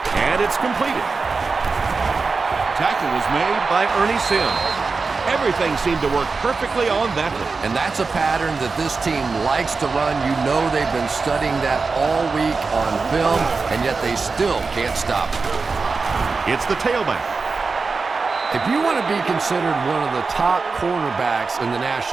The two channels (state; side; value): quieter; left; 4.4 dB